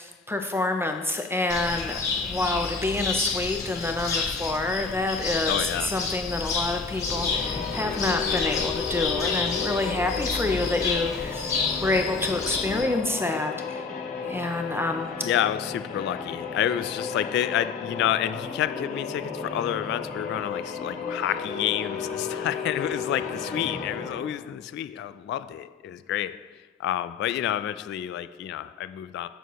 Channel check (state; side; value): quieter; right; 4.8 dB